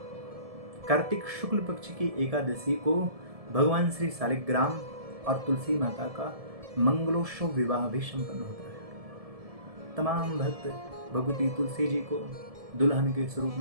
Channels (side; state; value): left; late; 1.7 ms